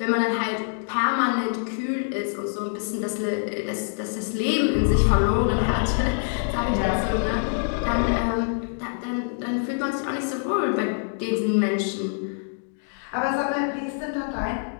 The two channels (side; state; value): right; silent; digital silence